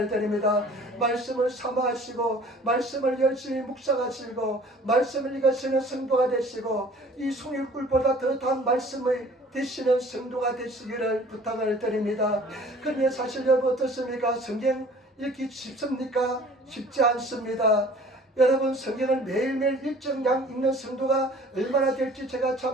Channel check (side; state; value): both; normal; correlation 0.50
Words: 드립니다. 말씀을 사모하시고 말씀을 열심히 묵상하시고 말씀을 읽으시는 성도가 되시고 이 송일꿀보다 더 단 말씀의 되시는 성도가 되시기를 부탁을 드립니다. 그런데 사실 여러분 어떻습니까? 성경 읽기 쉽습니까? 쉽지 않습니다. 여러분 성경을 매일매일 일정량 읽는 성도가 얼마나 될지 제가